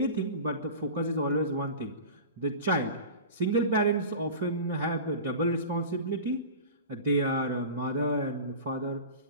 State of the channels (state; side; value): inverted; both; correlation -0.34